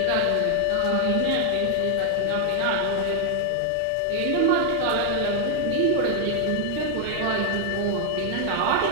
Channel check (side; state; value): both; different; correlation 0.00